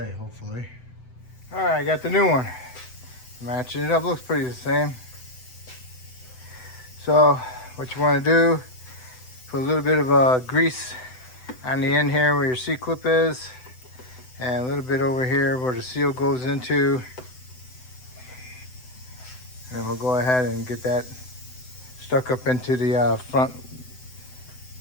hopefully. All right, I got the new one. Matching it up, looks pretty the same. So what you want to do, put a little bit of grease on the end here where your C-clip is, and a little bit over here where the seal goes into. And then we'll go ahead and get that stuck up into the front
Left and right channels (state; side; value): late; right; 7.9 ms